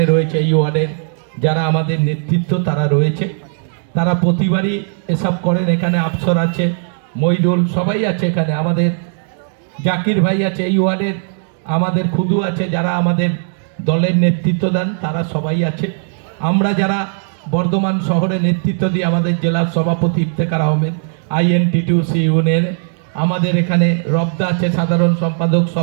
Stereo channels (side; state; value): left; silent; digital silence